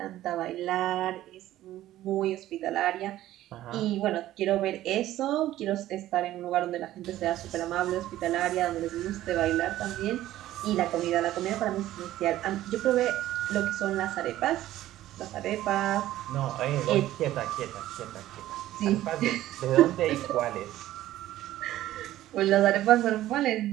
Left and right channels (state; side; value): quieter; left; 14.2 dB